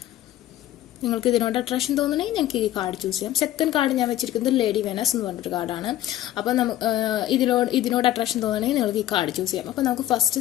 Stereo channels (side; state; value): right; quieter; 13.5 dB